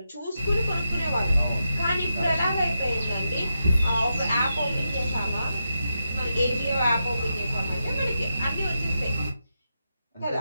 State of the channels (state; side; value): inverted; both; correlation -0.86